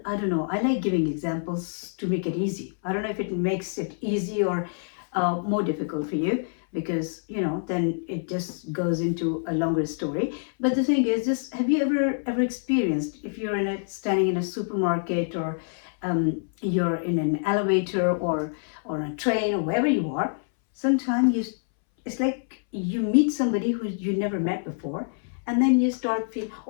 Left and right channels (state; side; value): silent; right; 61 dB below the other